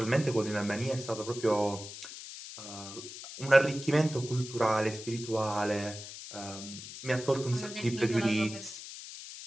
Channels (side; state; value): left; noise; hiss, 12 dB below the sound